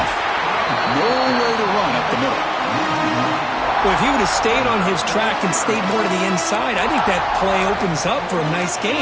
Nowhere to run up the middle. Well, if he would have stayed on his track and stayed more to the inside, I think that play opens up for a nice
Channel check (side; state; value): both; identical; correlation 1.00